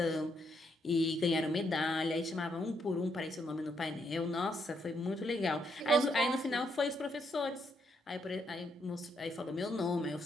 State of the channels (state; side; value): normal; both; correlation 0.75